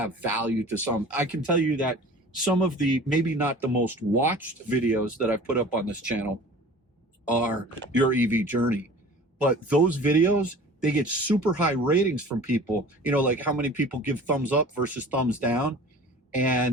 value to some. I can tell you that some of the, maybe not the most watched videos that I've put up on this channel are your EV journey. But those videos, they get super high ratings from people, like how many people give thumbs up versus thumbs down.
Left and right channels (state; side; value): normal; both; correlation 0.43